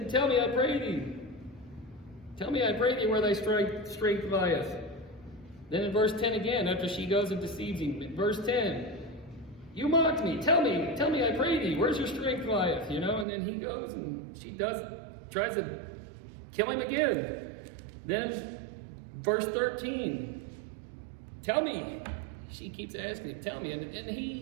tell me, I pray thee. Tell me, I pray thee, where thy strength lieth. Then in verse 10 again, after she goes and deceives him, verse 10, you mocked me. Tell me, I pray thee, where's your strength lieth? And then he goes and she tries to kill him again. Then verse 13, tell me. She keeps asking him, tell me. And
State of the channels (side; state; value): left; drops out; at 13.2 s